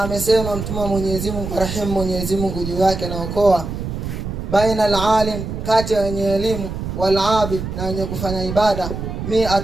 amesema mtume Mwenyezi Mungu rahim Mwenyezi Mungu juu yake na okoa, baina alalim, kati ya wenye elimu, wal abid, na wenye kufanya ibada,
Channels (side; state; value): right; noise; rumble, 6 dB below the sound